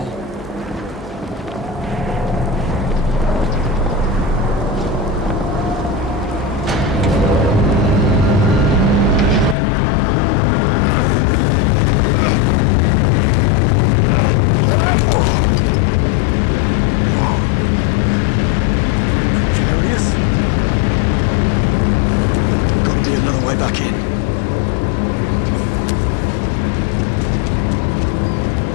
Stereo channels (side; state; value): right; drops out; at 9.6 s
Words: Precarious? Gotta be another way back in.